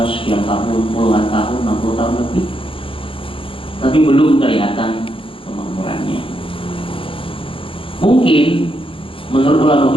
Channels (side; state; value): right; late; 0.26 ms